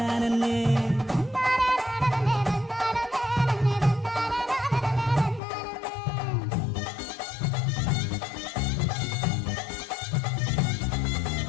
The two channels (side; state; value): right; drops out; at 5.4 s